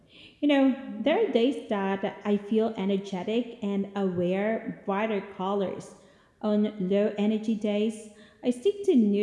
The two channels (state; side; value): identical; both; correlation 1.00